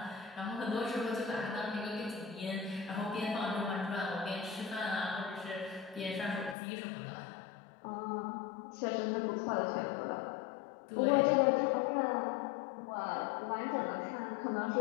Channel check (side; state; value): right; drops out; at 6.6 s